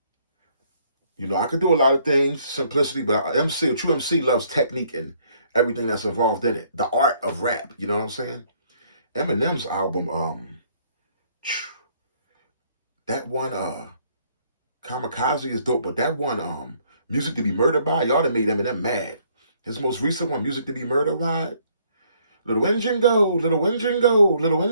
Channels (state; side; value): inverted; both; correlation -0.65